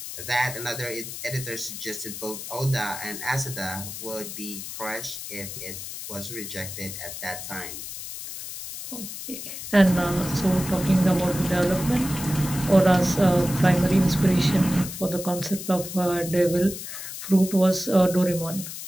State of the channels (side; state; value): left; noise; hiss, 9 dB below the sound